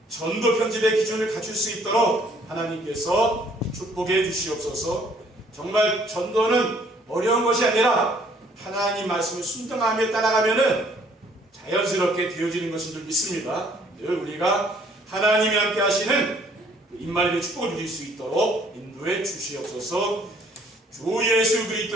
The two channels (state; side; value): normal; both; correlation 0.61